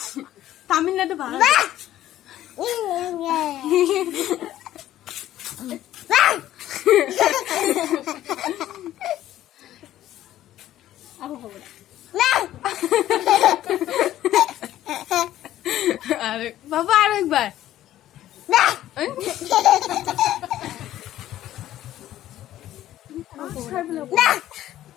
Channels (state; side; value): quieter; right; 13.2 dB